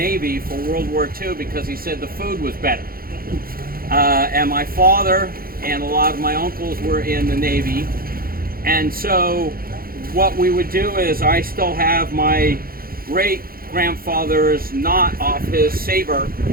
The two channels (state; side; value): late; left; 0.43 ms